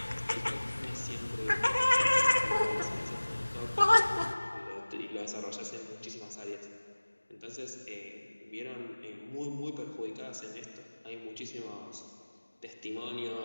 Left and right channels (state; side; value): inverted; both; correlation -1.00